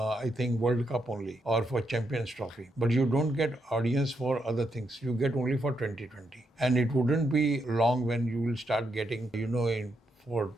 think, World Cup only or for Champions Trophy. But you don't get audience for other things. You get only for 2020. And it wouldn't be long when you will start getting,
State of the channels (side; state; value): both; normal; correlation 0.80